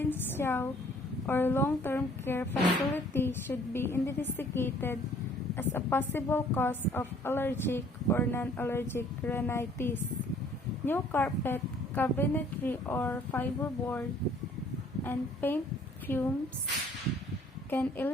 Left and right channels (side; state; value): both; normal; correlation 0.57